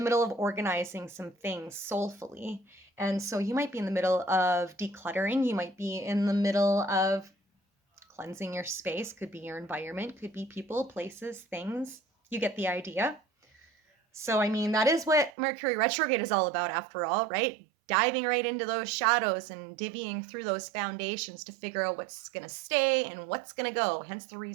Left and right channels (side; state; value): left; drops out; at 15.3 s